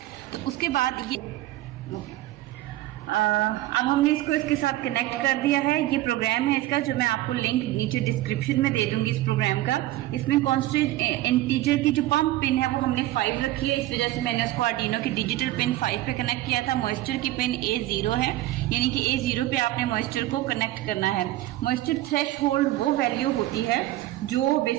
तो उसके बाद ये अब हमने इसको इसके साथ कनेक्ट कर दिया है। ये प्रोग्राम है इसका, जो मैं आपको लिंक नीचे डिस्क्रिप्शन में दे दूंगी इस प्रोग्राम का। इसमें कांस्टेंट इंटीजर की जो पंप पिन है वो हमने 5 रखी है, इस वजह से मैंने उसको आर्डिनो की डिजिटल पिन 5 पे कनेक्ट किया था। मॉइस्चर की पिन A0 है, यानी कि A0 पे आपने मॉइस्चर को कनेक्ट करना है। मॉइस्चर थ्रेशहोल्ड वो वैल्यू होती है जो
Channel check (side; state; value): left; quieter; 15.9 dB